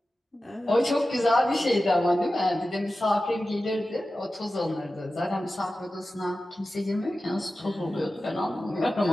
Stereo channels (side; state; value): both; normal; correlation 0.94